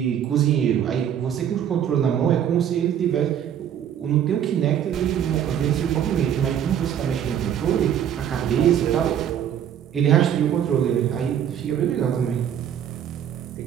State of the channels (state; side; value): quieter; left; 9.5 dB